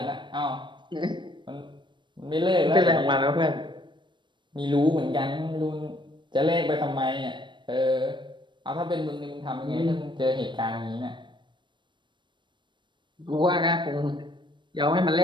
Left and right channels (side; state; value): left; late; 0.22 ms